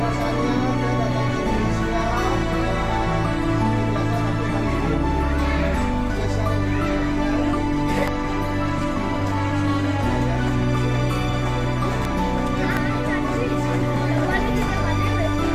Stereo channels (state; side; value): identical; both; correlation 1.00